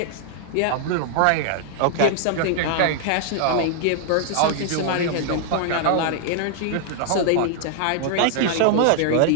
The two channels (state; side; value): different; both; correlation 0.00